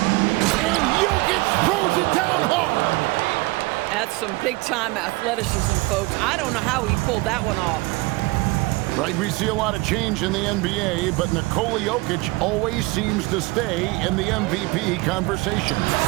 And Jokic throws it down hard. That's some big-time athleticism, folks. I don't know how he pulled that one off. Right, we see a lot of change in the NBA, but Nikola Jokic always seems to stay in the MVP conversation.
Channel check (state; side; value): quieter; left; 23.2 dB